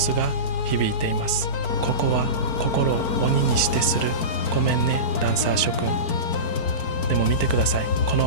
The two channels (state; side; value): late; right; 4.5 ms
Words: が響いています。ここは心を鬼にしてする。ごめんねダンサー諸君。でも見てください、こ